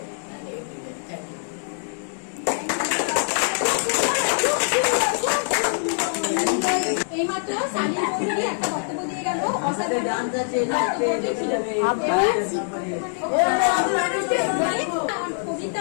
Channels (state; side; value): silent; right; digital silence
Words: and every day. Thank you. এইমাত্র সালিম চৌধুরী একটা বক্তব্য দিয়ে গেল। কবিতা